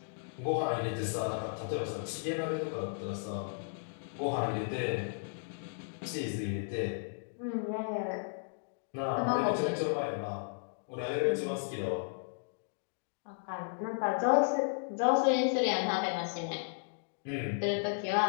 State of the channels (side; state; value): right; silent; digital silence